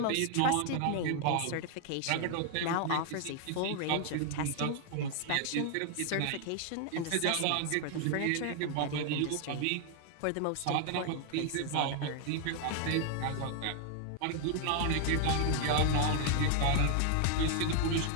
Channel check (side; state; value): both; different; correlation 0.00